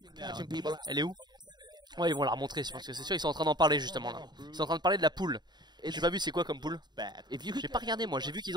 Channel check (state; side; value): late; left; 0.21 ms